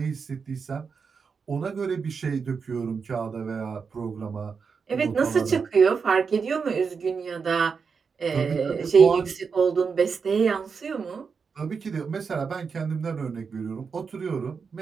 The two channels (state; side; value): quieter; left; 5.6 dB